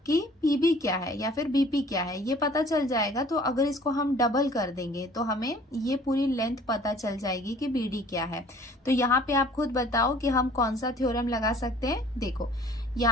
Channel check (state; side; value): normal; both; correlation 0.52